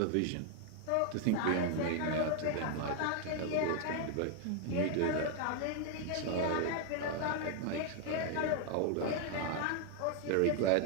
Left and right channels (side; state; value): both; different; correlation 0.00